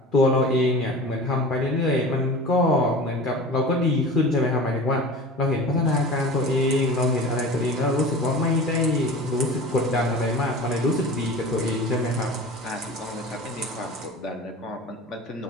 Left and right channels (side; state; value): both; normal; correlation 0.36